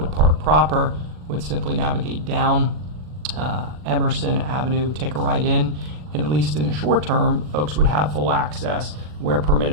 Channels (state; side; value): late; left; 40 ms